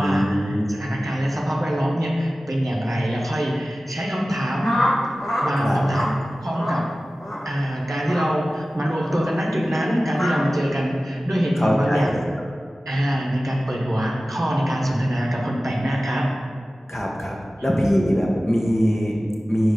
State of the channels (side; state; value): both; normal; correlation 0.96